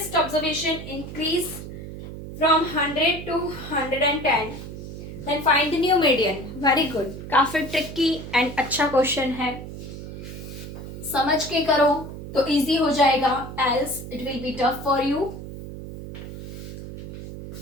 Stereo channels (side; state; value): right; noise; hum, 10 dB below the sound